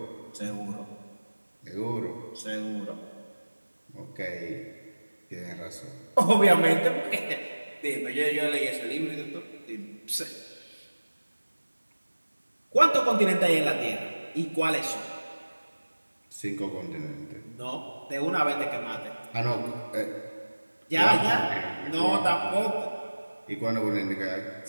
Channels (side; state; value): both; inverted; correlation -1.00